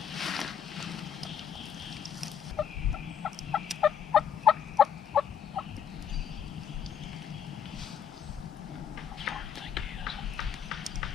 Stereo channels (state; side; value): quieter; right; 8.2 dB